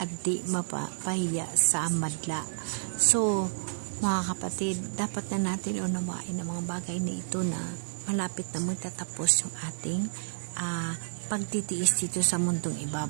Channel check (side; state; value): left; silent; digital silence